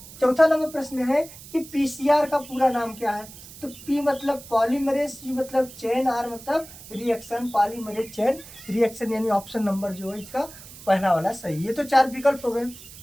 चौथा नंबर प्रश्न है कि PCR का पूरा नाम क्या है। तो P मतलब पॉलीमरेज, C मतलब चेन, R मतलब रिएक्शन, पॉलीमरेज चेन रिएक्शन, यानी ऑप्शन नंबर जो है इसका पहला वाला सही है। तो 4 विकल्प हो गए।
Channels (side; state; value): right; noise; hiss, 17 dB below the sound